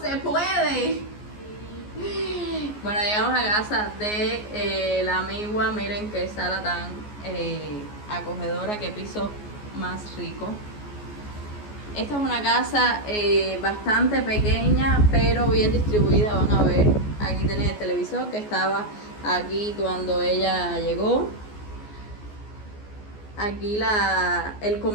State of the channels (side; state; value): right; late; 14 ms